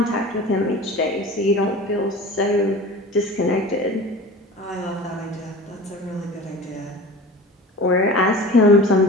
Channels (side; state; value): both; normal; correlation 0.37